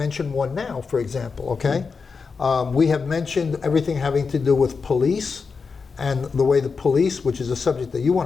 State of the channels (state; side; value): quieter; right; 5.1 dB